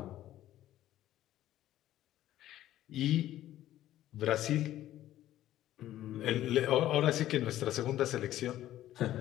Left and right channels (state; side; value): quieter; right; 13.4 dB